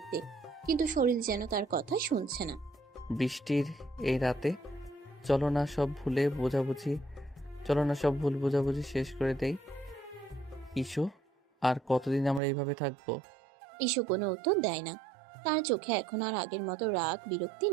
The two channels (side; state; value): left; drops out; at 12.4 s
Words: কিন্তু শরীর যেন তার কথা শুনছে না। বৃষ্টির এই রাতে চলো না সব ভুল বোঝাবুঝি শেষ করে দেই ইস্যু। আর কতদিন আমরা এইভাবে থাকবো? ইস্যু কোনো উত্তর দেয় না। তার চোখে এখন আর আগের মতো রাগ বিরক্তি